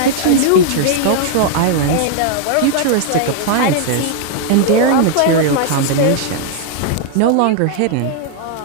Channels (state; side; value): different; both; correlation 0.00